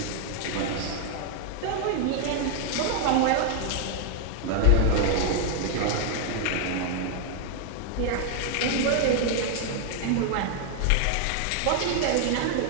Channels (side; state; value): both; different; correlation 0.00